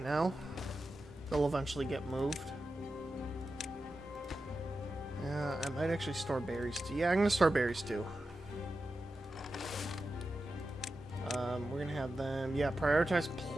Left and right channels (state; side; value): normal; both; correlation 0.91